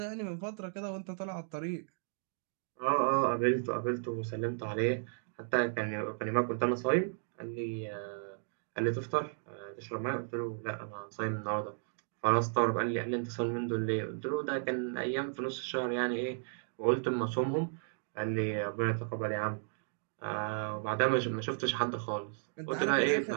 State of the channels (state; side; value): silent; left; digital silence